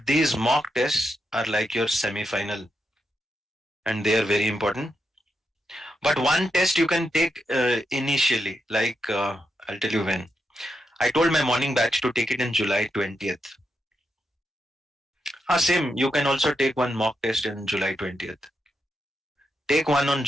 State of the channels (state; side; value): normal; both; correlation 0.84